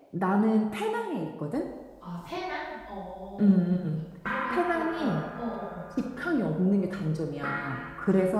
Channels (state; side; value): identical; both; correlation 1.00